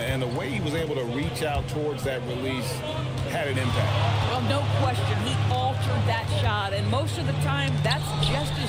the way he was able to reach out towards that release had an impact. Well, no question. He altered that shot, and most of the time, that's just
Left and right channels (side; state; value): both; identical; correlation 1.00